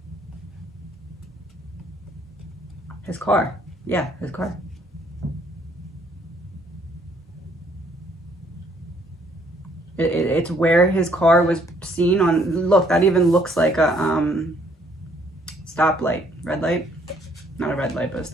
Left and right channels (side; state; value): both; normal; correlation 0.65